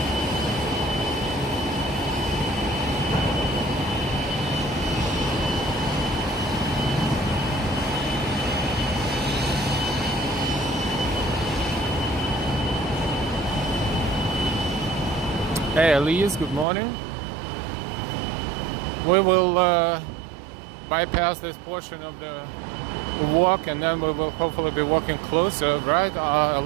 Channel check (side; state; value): left; drops out; at 16.7 s